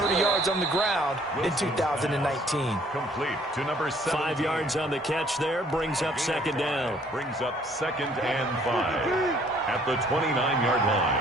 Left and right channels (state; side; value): normal; both; correlation 0.60